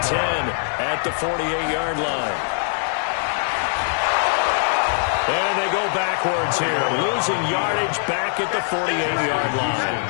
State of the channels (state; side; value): silent; right; digital silence